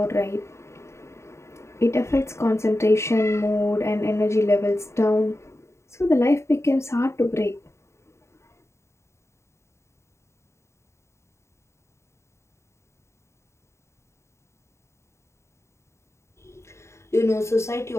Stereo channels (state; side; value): late; right; 0.13 ms